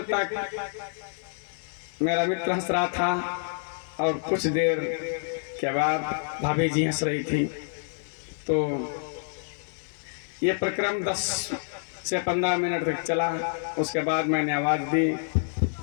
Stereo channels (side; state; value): right; silent; 60 dB below the other